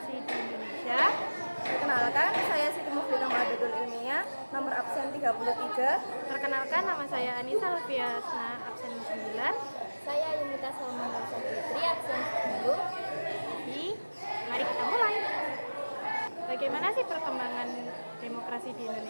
di Indonesia. Perkenalkan, saya Siti Muflidah Ma'adadul Ilmiah, nomor absen 33. Perkenalkan, nama saya Anissa Lufiasna, absen 9. Saya Yunita Salman Fitri, absen 10. Mari kita mulai. Bagaimana sih perkembangan demokrasi di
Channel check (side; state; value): both; inverted; correlation -1.00